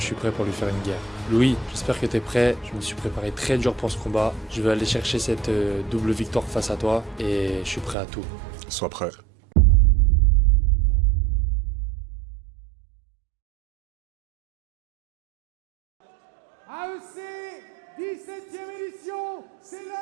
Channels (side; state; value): left; drops out; at 8.0 s